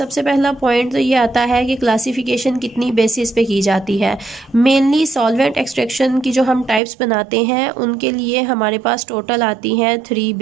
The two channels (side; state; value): left; drops out; at 6.8 s